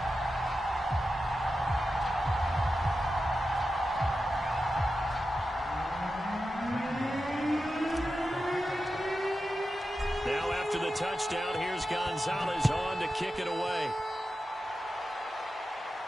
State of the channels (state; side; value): normal; both; correlation 0.91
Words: Now after the touchdown, here's Gonzalez on to kick it away.